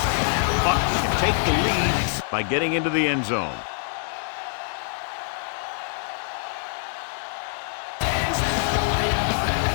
Bucs can take the lead by getting into the end zone.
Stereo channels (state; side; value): silent; right; 62 dB below the other